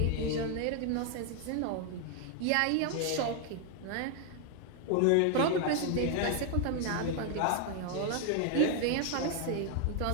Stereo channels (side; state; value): both; different; correlation 0.00